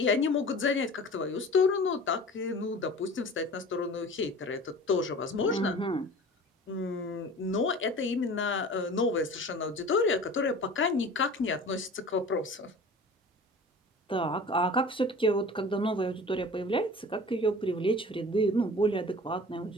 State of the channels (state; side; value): normal; both; correlation 0.41